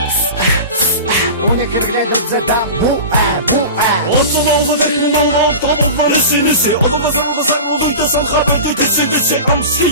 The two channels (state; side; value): inverted; both; correlation -0.32